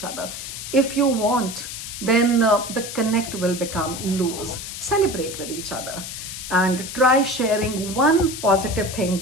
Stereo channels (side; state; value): left; noise; hiss, 8 dB below the sound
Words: other. If you want, then the connect will become loose. Celebrate with each other and try sharing one positive thing